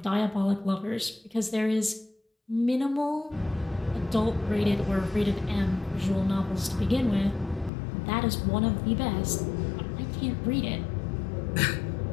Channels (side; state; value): right; drops out; at 7.7 s